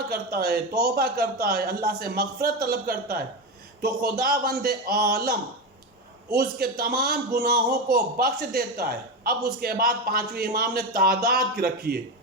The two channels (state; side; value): normal; both; correlation 0.17